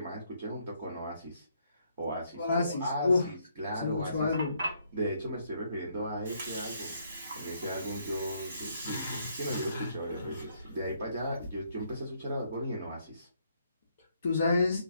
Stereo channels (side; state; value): both; inverted; correlation -0.71